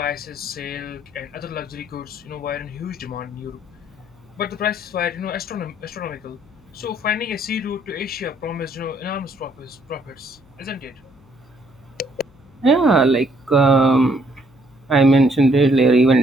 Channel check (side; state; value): left; noise; hum, 28 dB below the sound